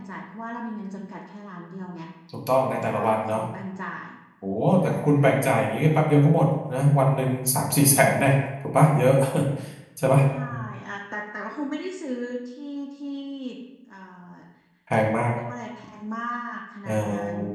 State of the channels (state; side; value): identical; both; correlation 1.00